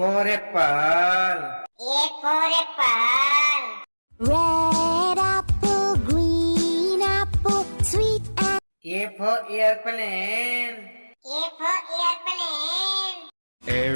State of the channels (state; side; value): inverted; both; correlation -1.00